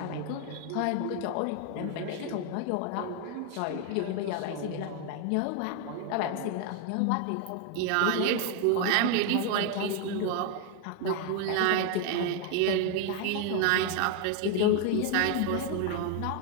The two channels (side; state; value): both; different; correlation 0.01